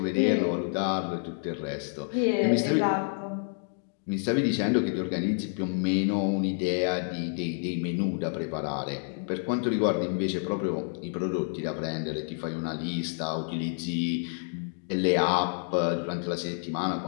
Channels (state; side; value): silent; right; 59 dB below the other